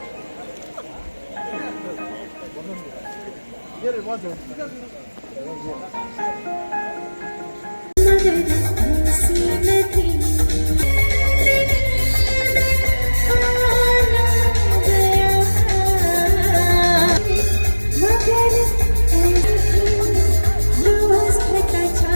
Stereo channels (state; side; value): inverted; both; correlation -1.00